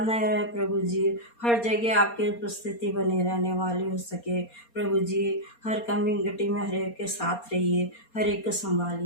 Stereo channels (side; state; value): right; late; 4.2 ms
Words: रहे प्रभु जी, हर जगह आपकी उपस्थिति बनी रहने वाली हो सके। प्रभु जी हर कमी घटी में हर एक के साथ रहिए, हर एक को